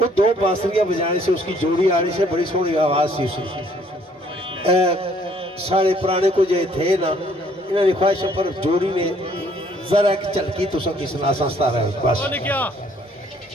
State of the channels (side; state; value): both; normal; correlation 0.62